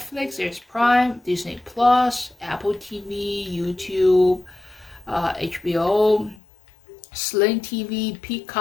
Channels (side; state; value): right; drops out; at 6.4 s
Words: there's Prime, Disney Plus, Apple TV, YouTube, HBO, Sling TV,